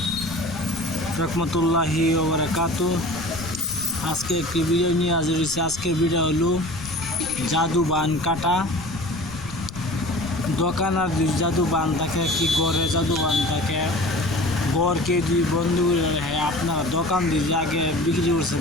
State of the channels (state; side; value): noise; left; rumble, 14 dB below the sound